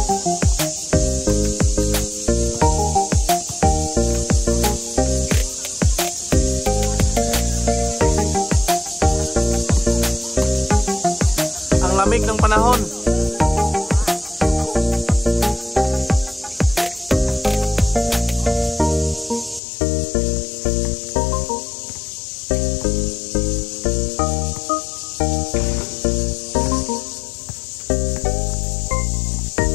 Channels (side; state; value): right; drops out; at 19.6 s